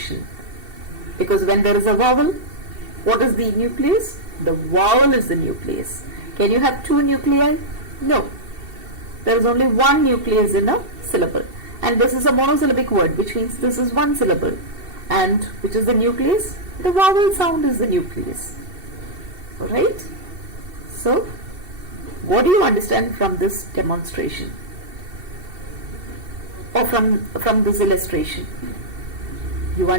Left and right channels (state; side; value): late; left; 2.7 ms